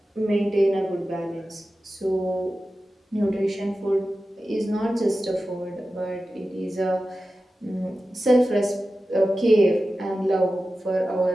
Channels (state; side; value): normal; both; correlation 0.94